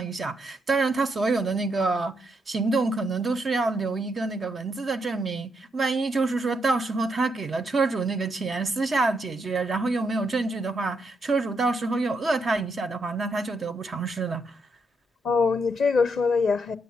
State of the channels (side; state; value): both; normal; correlation 0.79